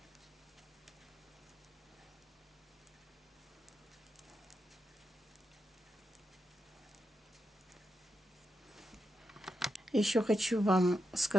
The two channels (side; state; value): both; normal; correlation 0.86